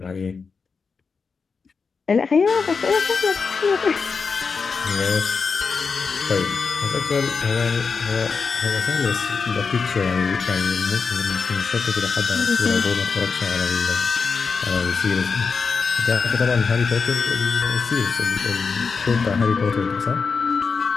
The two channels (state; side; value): quieter; right; 5.1 dB